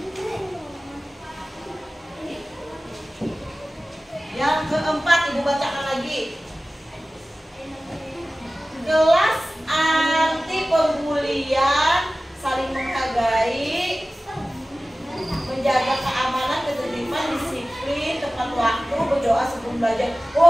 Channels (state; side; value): normal; both; correlation 0.97